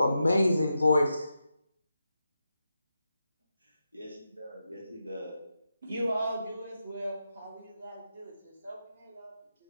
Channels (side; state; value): both; inverted; correlation -0.87